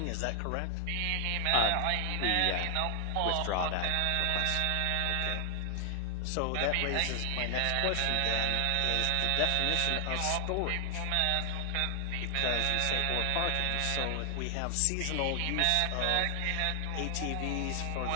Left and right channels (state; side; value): different; both; correlation 0.00